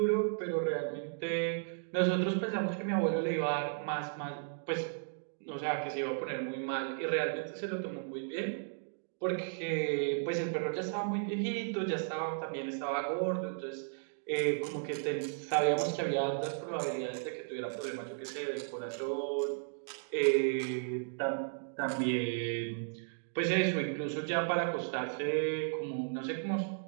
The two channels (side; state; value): left; silent; digital silence